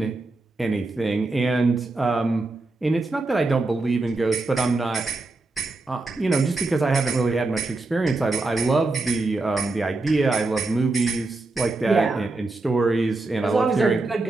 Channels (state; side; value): quieter; left; 3.2 dB